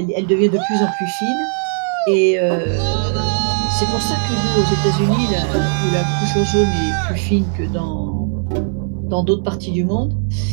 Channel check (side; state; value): left; silent; 67 dB below the other